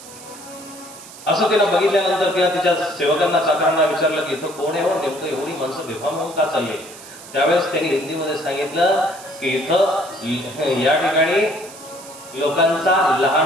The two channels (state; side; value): noise; right; hiss, 17 dB below the sound